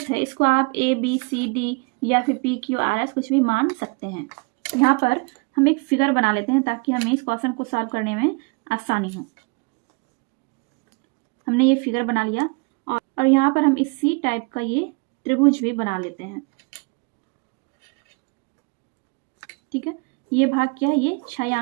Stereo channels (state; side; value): quieter; left; 31.7 dB